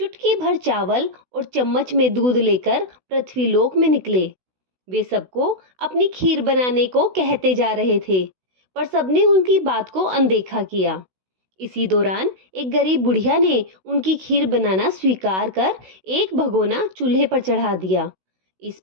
भर चावल और चम्मच में दूध लेकर पृथ्वीलोक में निकले। वे सबको अपनी खीर बनाने को कहते जा रहे थे, पर सबने उनकी बात को अनदेखा किया। इसी दौरान एक गरीब बुढ़िया ने उनकी खीर बनाना स्वीकार कर एक भगोना चूल्हे पर चढ़ा दिया। इस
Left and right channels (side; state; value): left; late; 16 ms